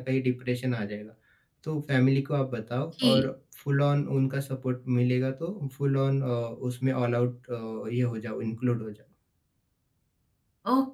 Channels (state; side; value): identical; both; correlation 1.00